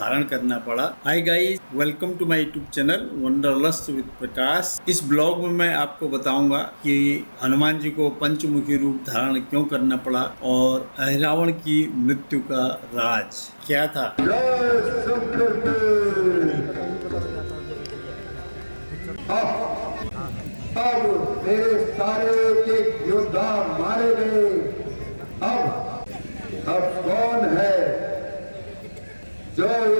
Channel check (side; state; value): both; inverted; correlation -1.00